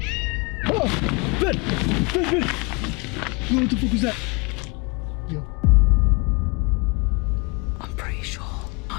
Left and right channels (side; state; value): right; quieter; 29.0 dB